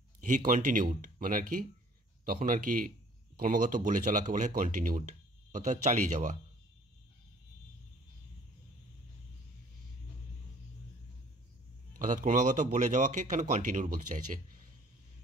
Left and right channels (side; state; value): both; normal; correlation 0.55